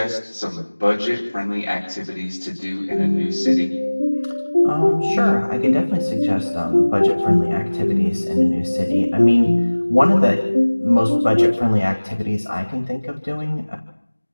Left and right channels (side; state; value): both; inverted; correlation -1.00